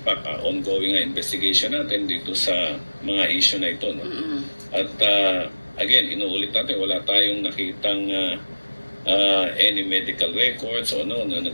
fact, ongoing investigation natin dito sa mga issue na ito. No? At again, inuulit natin, wala tayong nakitang any medical records o na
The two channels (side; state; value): both; inverted; correlation -1.00